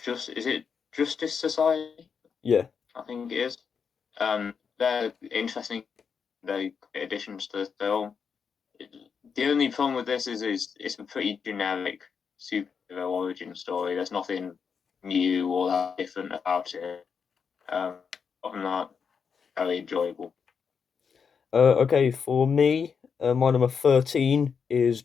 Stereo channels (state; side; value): quieter; right; 6.3 dB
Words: just is it Justice Society? Yeah. I think it is. They're interesting. They're great additions to the film. The only problem with this is it's a pretty generic superhero origin story. There's nothing. new or that different about it. Other than that, very enjoyable. Okay, for me, my number 13 is